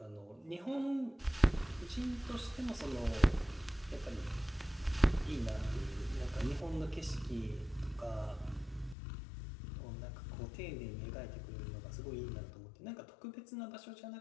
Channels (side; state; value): right; drops out; at 9.0 s